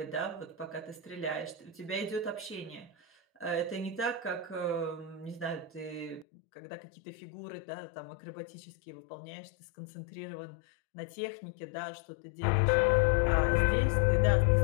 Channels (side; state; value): right; drops out; at 6.2 s